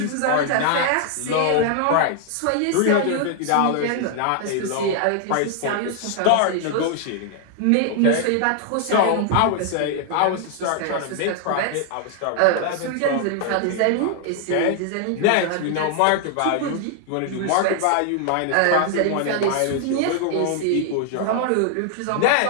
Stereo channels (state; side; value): different; both; correlation 0.00